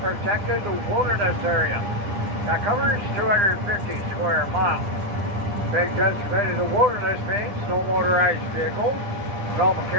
wilderness area that covers 250 square miles. Being designated a wilderness means no motorized vehicles, no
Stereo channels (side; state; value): left; late; 9.8 ms